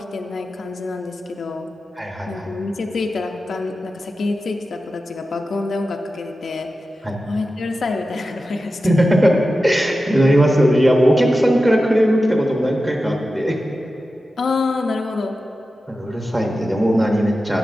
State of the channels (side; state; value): both; normal; correlation 0.93